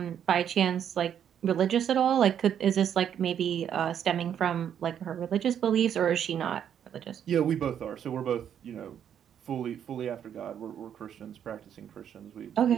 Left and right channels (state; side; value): quieter; left; 9.1 dB